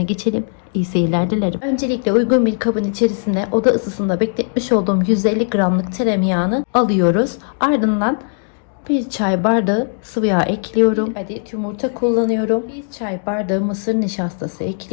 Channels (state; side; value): silent; right; 67 dB below the other